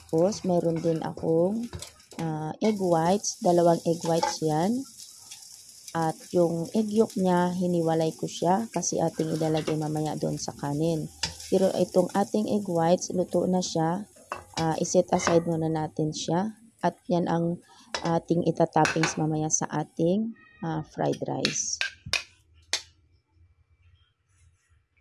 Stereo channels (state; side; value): identical; both; correlation 1.00